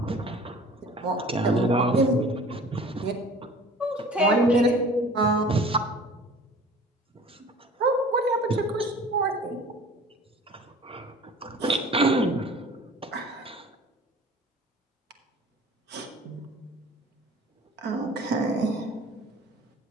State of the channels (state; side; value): normal; both; correlation 0.45